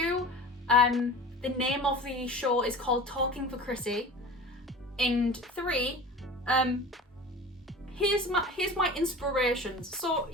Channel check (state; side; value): normal; both; correlation 0.37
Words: The name of the show is called Talking for Chrissy. And 3, here's my inspirations. So